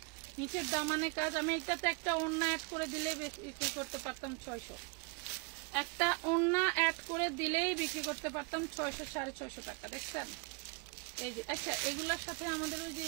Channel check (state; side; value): quieter; left; 30.7 dB